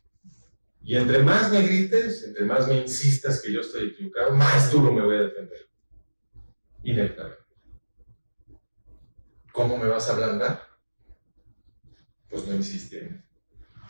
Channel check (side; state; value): both; inverted; correlation -1.00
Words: Y entre más me grites, entre más me insistas que yo estoy equivocado, más duro me voy a defender. Inevitablemente. ¿Cómo me vas a ablandar? Pues no insistir.